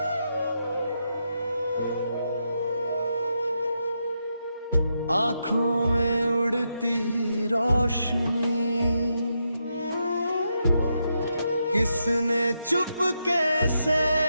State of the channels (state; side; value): inverted; both; correlation -0.83